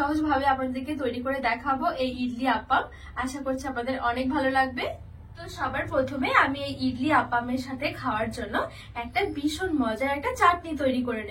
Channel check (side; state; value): both; identical; correlation 1.00